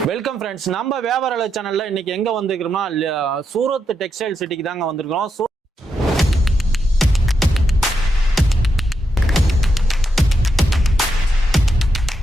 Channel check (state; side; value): normal; both; correlation 0.83